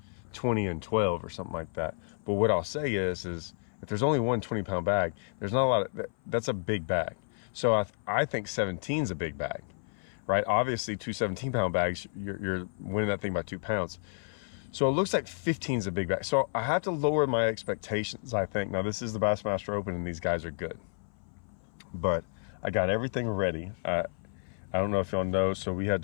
20 and 12 or something like that. But what I'll say is if there's only one 20-pound bag, there's not a lot of, that's a big bag. So I think 17 is a big bag, right? Obviously, two 17-pound bags, you're winning that thing by 2 pounds. So it looks like 15 is a big bag. So I have to lower my expectations, I think. Now this is the Bassmaster Open and these guys are good. But I got everything ready. I don't know if y'all know, so we had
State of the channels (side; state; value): right; silent; 57 dB below the other